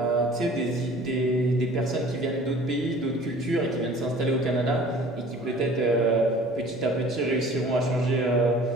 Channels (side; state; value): both; normal; correlation 0.48